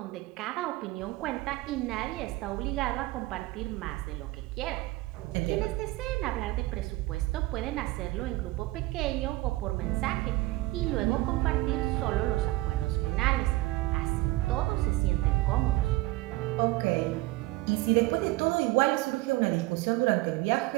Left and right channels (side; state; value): left; quieter; 19.5 dB